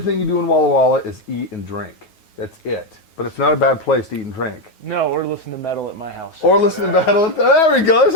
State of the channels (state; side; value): late; right; 9.4 ms